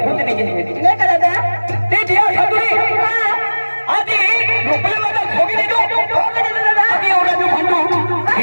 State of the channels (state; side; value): inverted; both; correlation -1.00